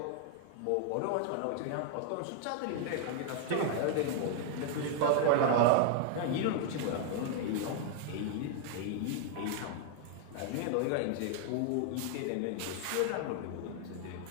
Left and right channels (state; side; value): different; both; correlation 0.00